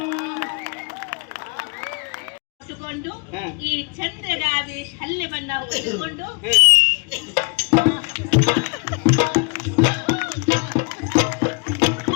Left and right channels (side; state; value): right; quieter; 34.8 dB